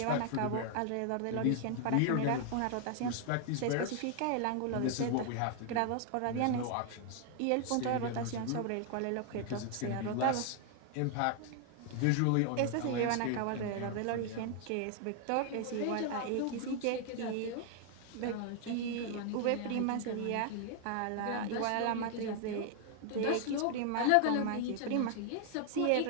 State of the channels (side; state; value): both; different; correlation 0.00